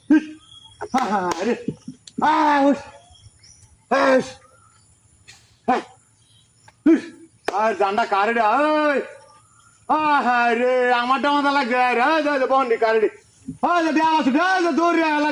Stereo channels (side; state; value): both; identical; correlation 1.00